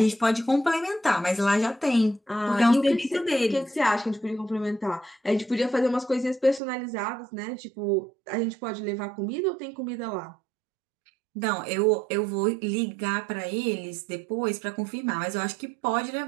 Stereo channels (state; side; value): drops out; left; at 6.6 s